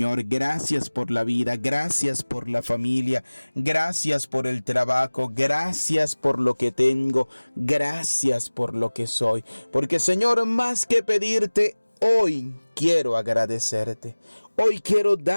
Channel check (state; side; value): inverted; both; correlation -1.00